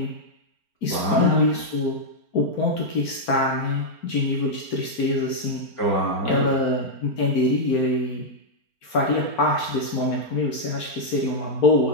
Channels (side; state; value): right; late; 4.4 ms